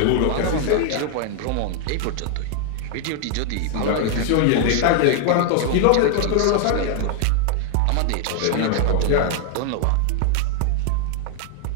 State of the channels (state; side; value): different; both; correlation 0.00